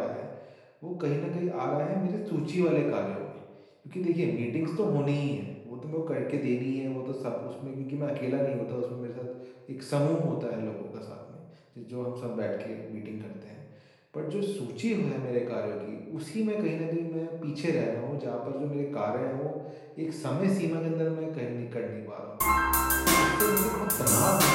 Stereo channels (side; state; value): both; identical; correlation 1.00